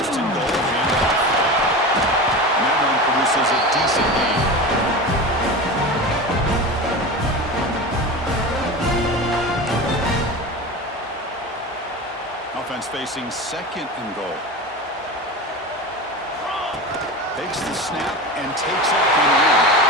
and goal, handoff. And that one produces a decent gain. Offense facing second and goal. Takes the snap and takes off in the end.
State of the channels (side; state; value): both; normal; correlation 0.28